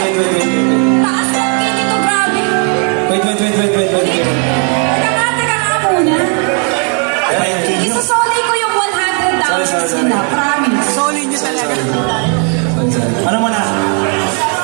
ng key nito, grabe. Wait. Teka nga muna. Isasolay ko yung $100 Sorry. nila, promise. Solid niyo talaga. Ano mo na?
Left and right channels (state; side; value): quieter; left; 39.1 dB